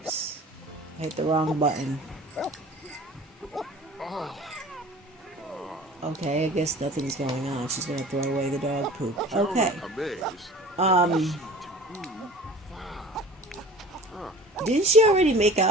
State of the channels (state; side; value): normal; both; correlation 0.43